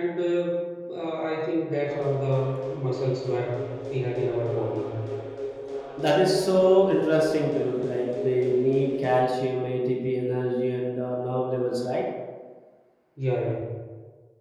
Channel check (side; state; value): both; identical; correlation 1.00